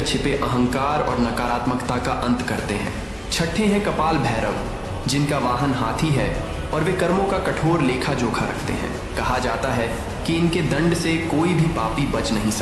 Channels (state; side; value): identical; both; correlation 1.00